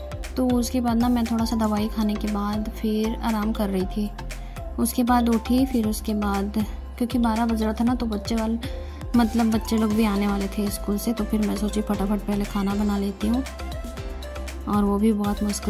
तो उसके बाद ना मैं थोड़ा सा दवाई खाने के बाद फिर आराम कर रही थी। उसके बाद उठी, फिर उसके बाद क्योंकि 12 बज रहा था ना, तो बच्चे लोग भी आने वाले थे स्कूल से। तो फिर मैं सोची फटाफट पहले खाना बना लेती हूँ, और वो भी बहुत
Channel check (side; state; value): both; identical; correlation 1.00